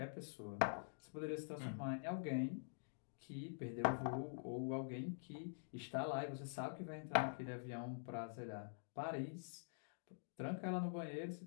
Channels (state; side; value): silent; right; digital silence